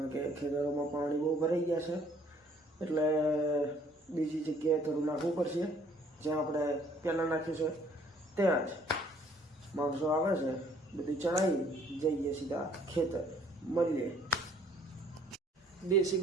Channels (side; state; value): both; normal; correlation 0.60